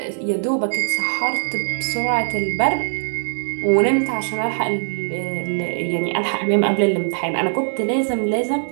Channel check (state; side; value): silent; left; digital silence